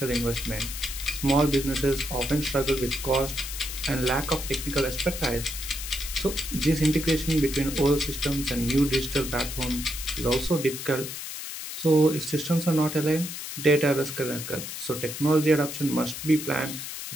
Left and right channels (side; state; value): left; noise; hiss, 8 dB below the sound